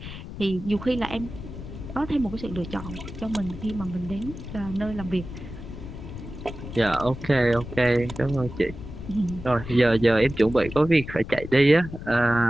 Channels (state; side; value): noise; left; rumble, 11 dB below the sound